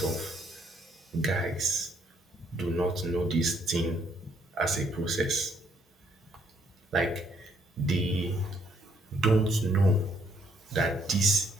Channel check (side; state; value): both; normal; correlation 0.69